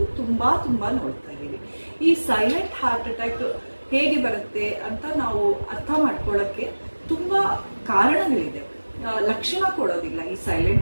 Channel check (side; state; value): both; inverted; correlation -1.00